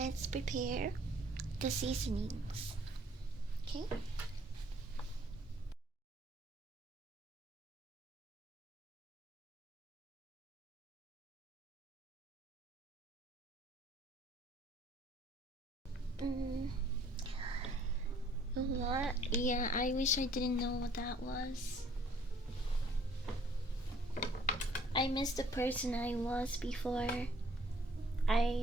prepare the seasonings. Okay. Mm, what? Yeah, I wish I didn't know what that was. I missed the person I was before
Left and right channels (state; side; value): normal; both; correlation 0.59